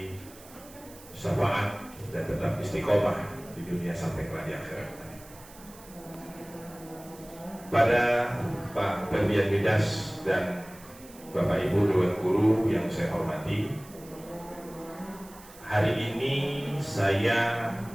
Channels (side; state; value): right; noise; hiss, 21 dB below the sound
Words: syafaat dan tetap istiqomah di dunia sampai ke di akhirat. Pada Pak Ferdian Midas dan Bapak Ibu Dewan Guru yang saya hormati, hari ini saya